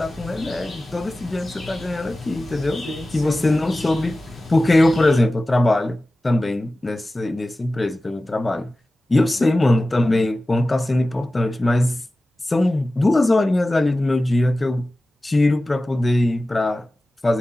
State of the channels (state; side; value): normal; both; correlation 0.96